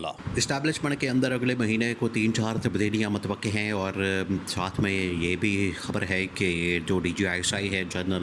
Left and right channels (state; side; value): identical; both; correlation 1.00